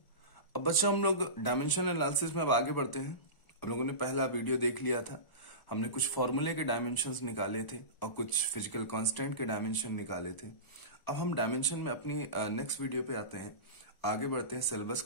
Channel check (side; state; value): right; late; 1.0 ms